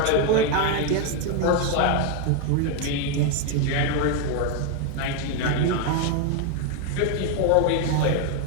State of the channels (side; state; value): both; different; correlation 0.01